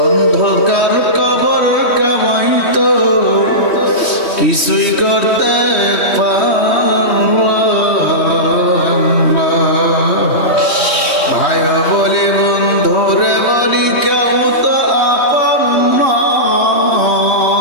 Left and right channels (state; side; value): late; right; 3.1 ms